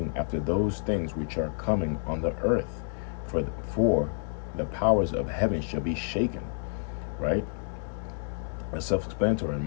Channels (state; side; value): silent; right; 58 dB below the other